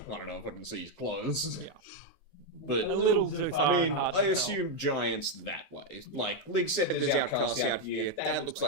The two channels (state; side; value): late; right; 15 ms